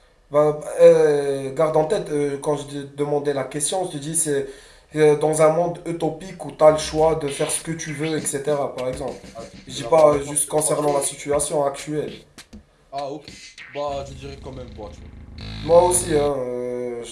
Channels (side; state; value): both; identical; correlation 1.00